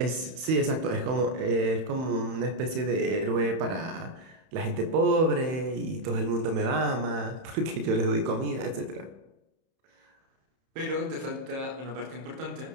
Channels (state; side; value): late; left; 31 ms